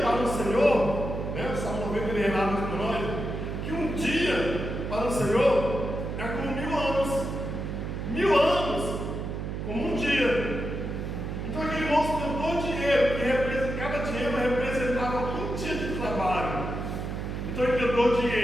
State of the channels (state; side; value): noise; right; hum, 4 dB below the sound